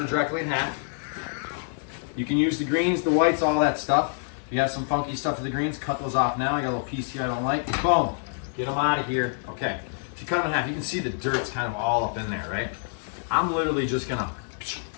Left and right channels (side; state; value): right; silent; digital silence